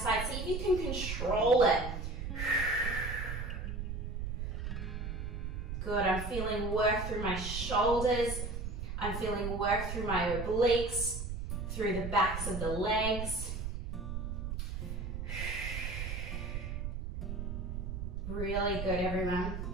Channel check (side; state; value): right; noise; rumble, 4 dB below the sound